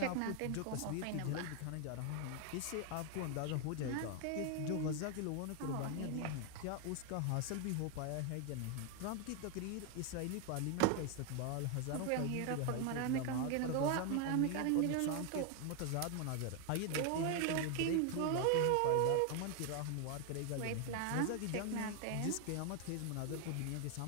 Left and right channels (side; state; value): both; different; correlation 0.01